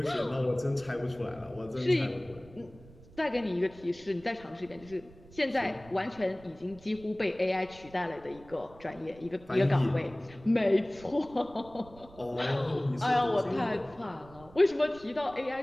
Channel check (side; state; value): right; noise; rumble, 22 dB below the sound